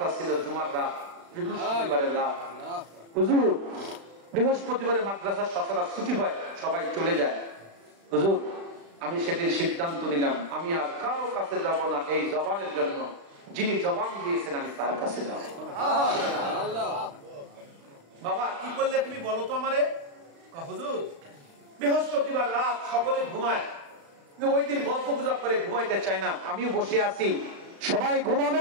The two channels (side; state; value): left; late; 35 ms